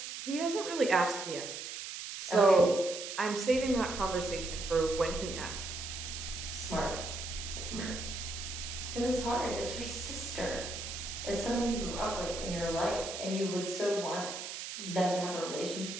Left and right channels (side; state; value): right; noise; hiss, 7 dB below the sound